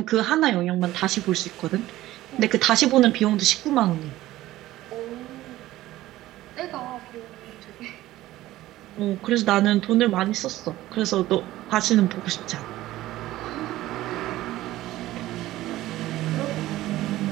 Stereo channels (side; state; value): left; quieter; 15.8 dB